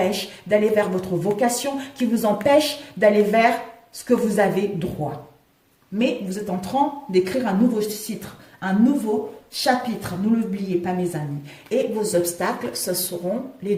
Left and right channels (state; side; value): identical; both; correlation 1.00